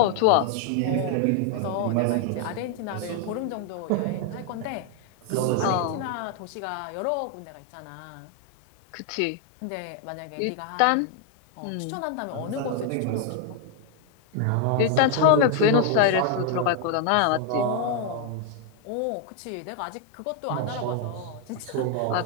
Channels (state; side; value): different; both; correlation 0.00